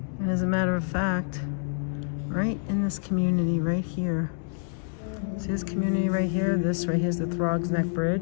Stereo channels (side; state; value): right; silent; digital silence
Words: And as a matter of fact, right in this community right here, see this community right here? This right here is the Throgs Neck